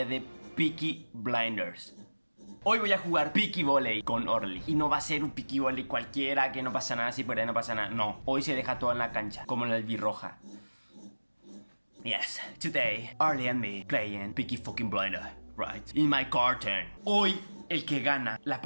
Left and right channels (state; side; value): inverted; both; correlation -1.00